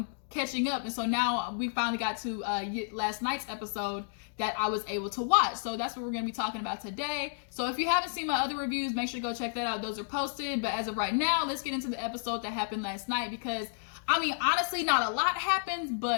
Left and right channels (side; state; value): right; silent; digital silence